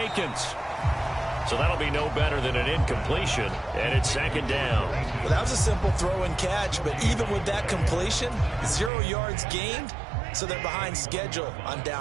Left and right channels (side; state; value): left; drops out; at 8.9 s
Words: So that'll be no better than an incompletion, and it's second down. Well, that was a simple throw and catch, but even with that completion, 0 yards gained, so they're behind schedule on